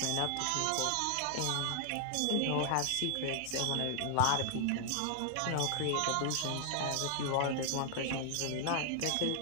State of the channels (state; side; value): different; both; correlation 0.00